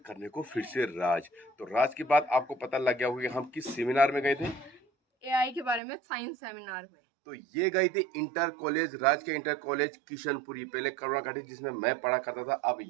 को फिर से राज। तो राज की बात आपको पता लग गया होगा कि हम किस सेमिनार में गए थे, एआई के बारे में साइंस सेमिनार में। तो ये गई थी इंटर कॉलेज, राज के इंटर कॉलेज किशनपुरी, पहले करुणा घाटी जिसमें मैं पढ़ा करता था, अब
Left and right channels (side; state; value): left; drops out; at 5.8 s